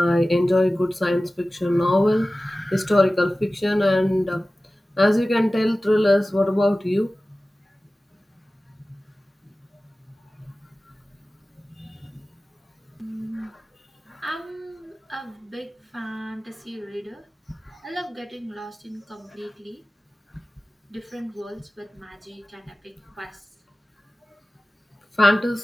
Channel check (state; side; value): normal; both; correlation 0.96